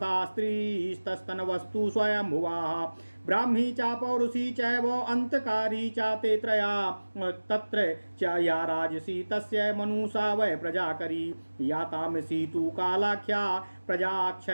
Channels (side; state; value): both; inverted; correlation -1.00